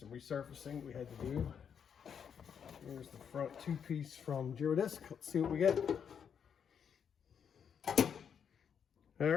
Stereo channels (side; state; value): right; quieter; 7.6 dB